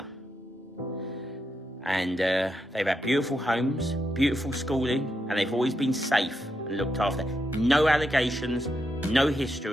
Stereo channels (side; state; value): both; normal; correlation 0.83